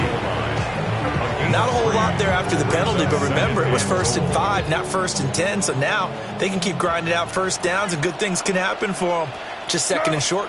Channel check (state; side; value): identical; both; correlation 1.00